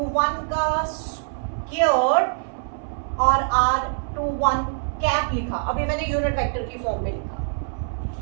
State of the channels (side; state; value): left; silent; 63 dB below the other